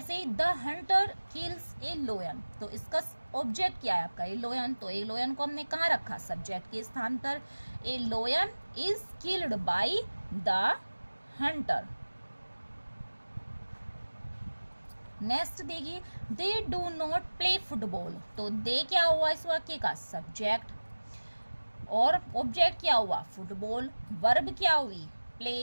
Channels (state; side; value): inverted; both; correlation -1.00